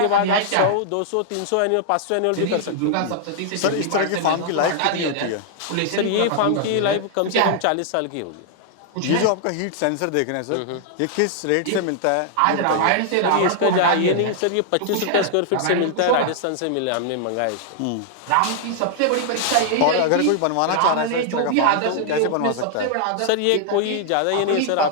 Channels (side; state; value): both; different; correlation -0.01